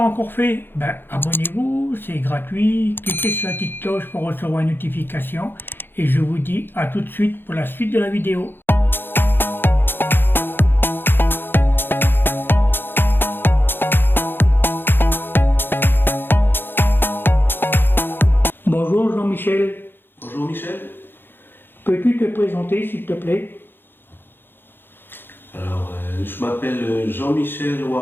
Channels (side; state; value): right; late; 0.10 ms